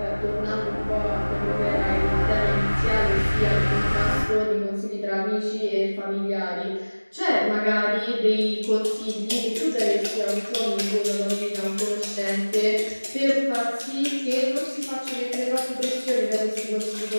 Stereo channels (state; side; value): inverted; both; correlation -1.00